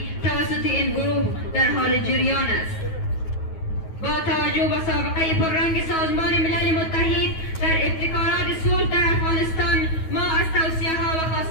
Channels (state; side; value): late; right; 9.3 ms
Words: توسط این گروه در حال جریان است. با توجه به سابقه پررنگ سازمان ملل متحد در ابتکارات صلح در افغانستان، ما از توصیه ها و